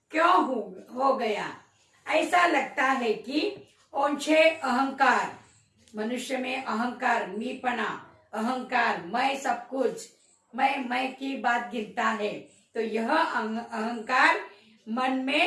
क्यों हो गया? ऐसा लगता है कि ओछे अहंकार, मनुष्य में अहंकार, मीपना, अहंकार, मैं सब कुछ, मैं की बात गिरता है। तो यह अहंकार मन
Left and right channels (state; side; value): identical; both; correlation 1.00